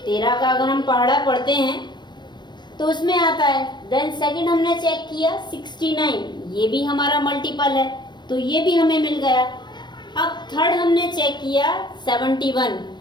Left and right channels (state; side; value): late; right; 0.21 ms